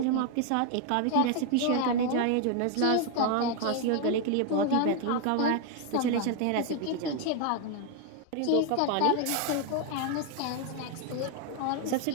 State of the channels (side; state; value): both; different; correlation 0.01